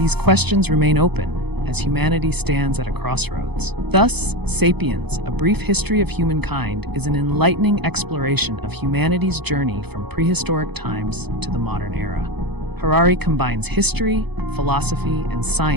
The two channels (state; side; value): late; left; 0.98 ms